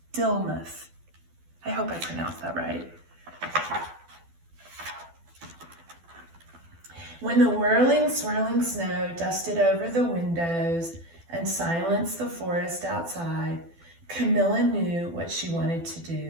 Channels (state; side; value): late; left; 12 ms